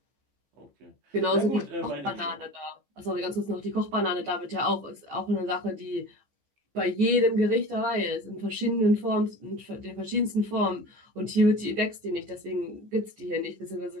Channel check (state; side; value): late; left; 14 ms